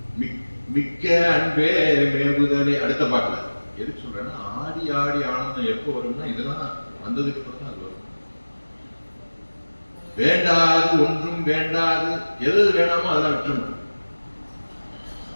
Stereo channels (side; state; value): both; inverted; correlation -1.00